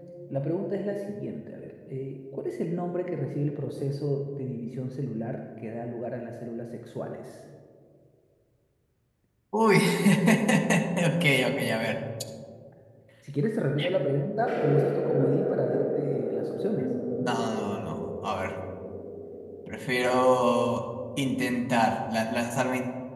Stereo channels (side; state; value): both; identical; correlation 1.00